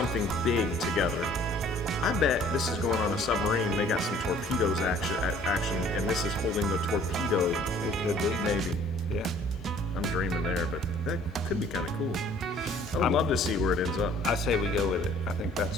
big together. I bet this is going on a submarine. They got some torpedoes action, and this is holding the torpedo. It could be. Maybe. Yeah. I'm dreaming there, but that could be kind of cool. I would love to see where it ends up. I say we go with it. I think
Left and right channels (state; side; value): normal; both; correlation 0.55